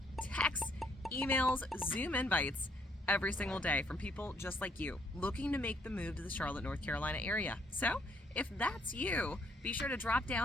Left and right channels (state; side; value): normal; both; correlation 0.68